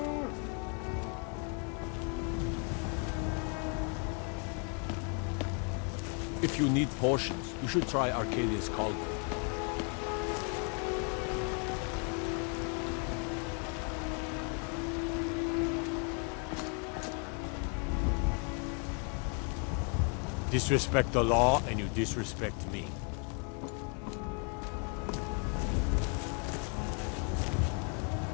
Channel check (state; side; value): quieter; right; 38.9 dB